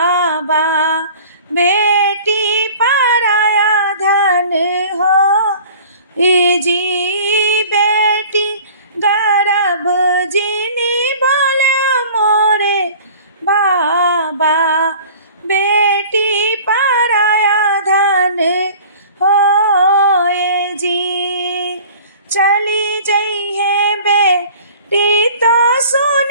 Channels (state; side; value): inverted; both; correlation -0.46